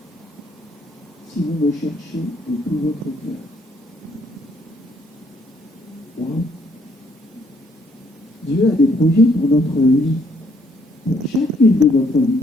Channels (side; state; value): both; normal; correlation 0.68